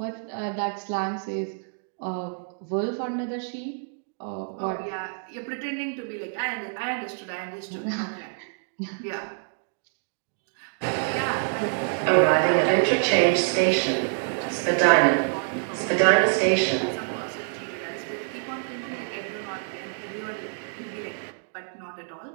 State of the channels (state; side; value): silent; left; digital silence